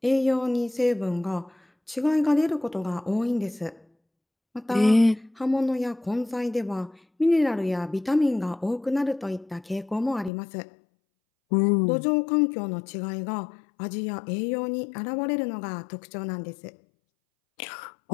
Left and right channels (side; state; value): right; drops out; at 10.3 s